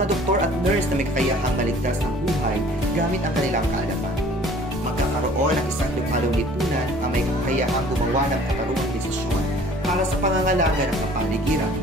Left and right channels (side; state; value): both; normal; correlation 0.51